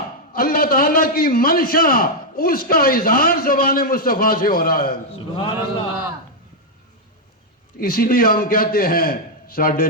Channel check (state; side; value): normal; both; correlation -0.01